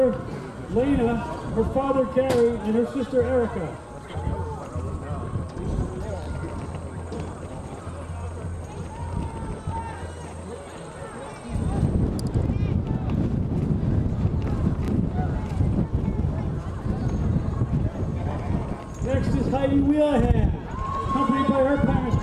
Lena, her father, Gary, and her sister, Erica. Next is Heidi Wheelahan, accompanied by her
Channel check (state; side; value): identical; both; correlation 1.00